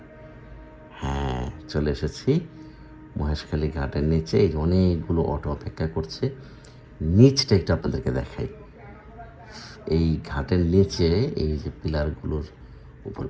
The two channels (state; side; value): identical; both; correlation 1.00